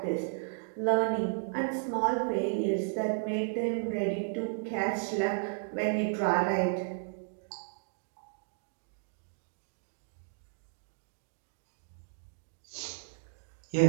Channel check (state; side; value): silent; left; digital silence